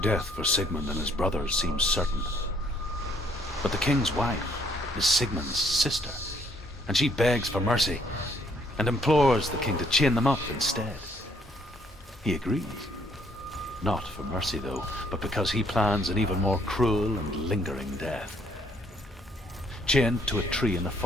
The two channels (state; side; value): normal; both; correlation 0.67